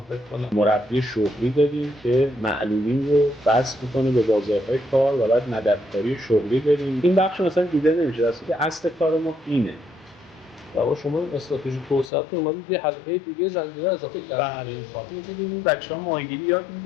فکر کنم. مربی شغلی داریم که معلولین رو بس میکنه به بازارهای کار و بعد مددکاری شغلی داریم. این بخش مثلا دیده نمیشه، اصل کار ما اینه. و شما استراتژی توسعه‌تون اومدید یه حلقه دیگه زنجیره اضافه کردید. این بچه‌ها ماهیگیری یاد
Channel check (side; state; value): right; drops out; at 12.1 s